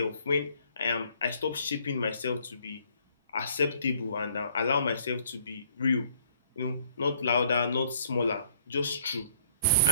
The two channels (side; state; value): both; inverted; correlation -0.62